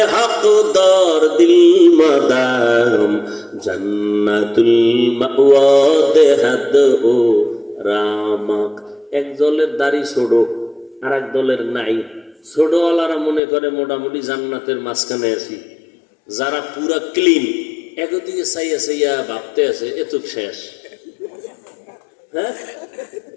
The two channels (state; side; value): drops out; right; at 13.4 s